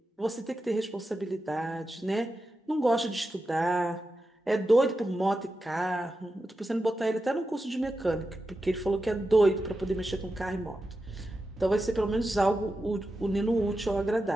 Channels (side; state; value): both; normal; correlation 0.90